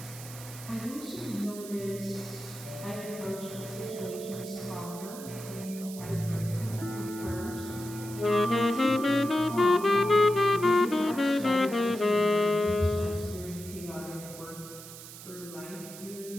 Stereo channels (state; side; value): noise; right; hiss, 14 dB below the sound